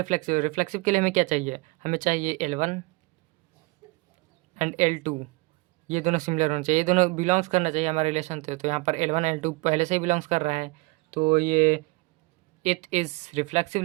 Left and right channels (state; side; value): quieter; left; 24.7 dB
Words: के लिए हमें क्या चाहिए, हमें चाहिए L1 एंड L2, ये दोनों सिमिलर होना चाहिए, ये दोनों बिलोंग्स करना चाहिए हमारे रिलेशन से। तो यहाँ पर L1 L2 पहले से ही बिलोंग्स कर रहा है, तो ये इट इज़ रिफ्लेक्सिव